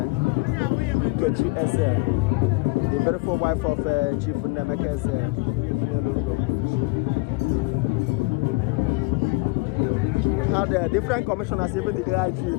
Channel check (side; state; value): right; quieter; 24.6 dB